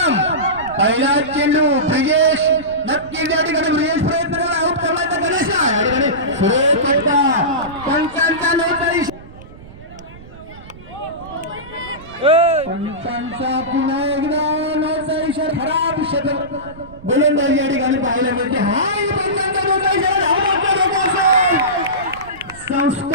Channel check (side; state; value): right; noise; rumble, 19 dB below the sound